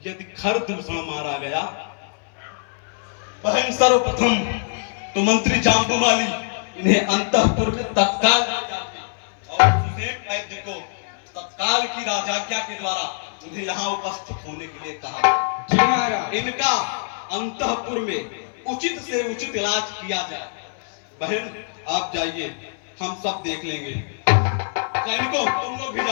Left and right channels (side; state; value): right; silent; 60 dB below the other